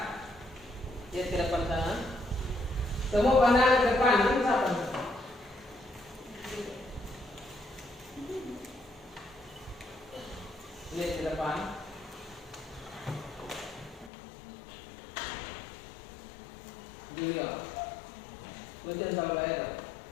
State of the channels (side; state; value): right; drops out; at 14.1 s